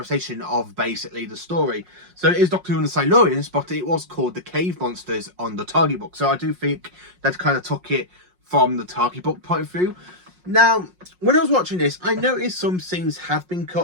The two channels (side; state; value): left; late; 5.5 ms